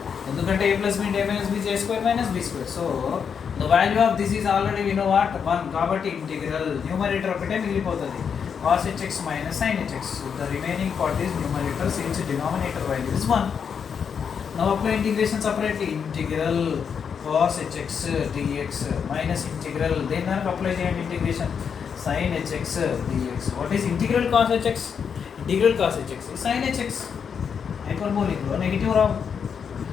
ఎందుకంటే a plus b into a minus b is a square minus b square. So the value of this is already we know what? 1. కాబట్టి integral numerator ఒకటే మిగిలిపోతుంది. Cos hx minus sin hx. So the remaining part is numerator since denominator value is 1. Now apply integration separately. Integral cos hx dx minus integral then apply చేయండి integration sin hx dx. What is integral cos hx? Integral cos hx is sin hx. Hyperbolic లో negative Rao.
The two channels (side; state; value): right; quieter; 6.9 dB